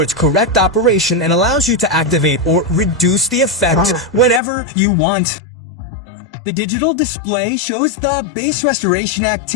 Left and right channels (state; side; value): drops out; right; at 4.4 s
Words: its correct operation and allows you to activate or reduce the effect whenever you want. The digital display shows the bass restoration